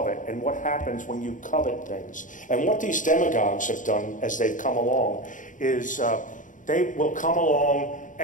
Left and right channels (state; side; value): late; right; 0.37 ms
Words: and what happens when you covet things. And what these demagogues have done as they've come along is they will come along